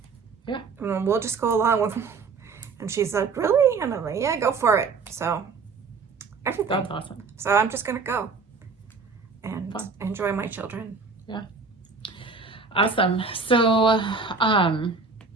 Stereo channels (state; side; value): quieter; left; 4.7 dB